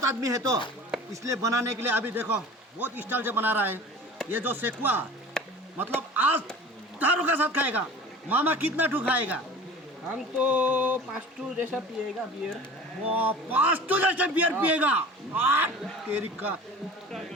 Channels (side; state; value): both; normal; correlation 0.40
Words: आदमी है तो इसलिए बनाने के लिए अभी देखो बहुत स्टाइल से बना रहा है। ये जो सेकुआ मतलब आज दारू के साथ खाएगा। मामा कितना ठू खाएगा? हम तो 5 जैसा पिएगा बियर। वो 5 जैसे बियर पिएगा। तेरी का